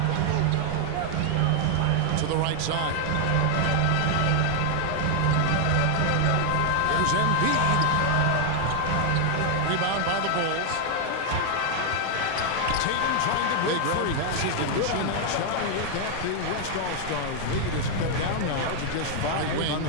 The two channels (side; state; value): both; different; correlation 0.00